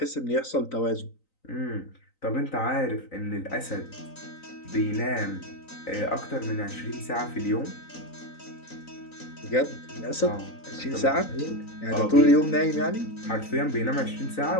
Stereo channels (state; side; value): late; right; 3.9 ms